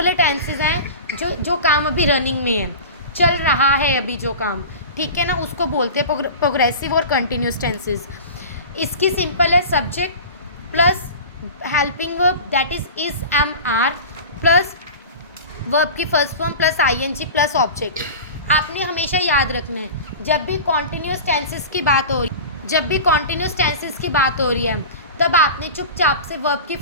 टेंसेस हैं जो काम अभी रनिंग में है, चल रहा है अभी जो काम, ठीक है ना, उसको बोलते हैं प्रोग्रेसिव और कंटिन्यूस टेंसेस. इसकी सिंपल है subject plus helping verb that is am are plus verb की first form plus ING plus object. आपने हमेशा याद रखना है जब भी कॉन्टिन्यूस टेंसेस की बात हो रही है तब आपने चुपचाप से वर्ब की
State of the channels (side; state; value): both; inverted; correlation -0.34